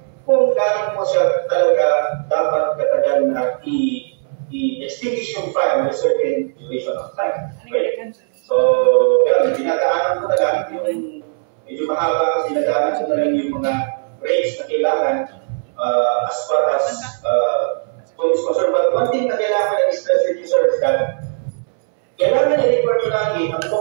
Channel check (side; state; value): left; silent; 64 dB below the other